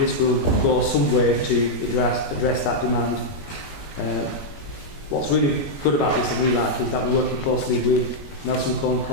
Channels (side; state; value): right; late; 21 ms